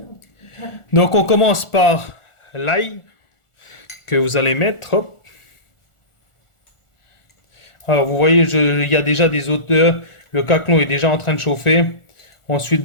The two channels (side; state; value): right; late; 1.4 ms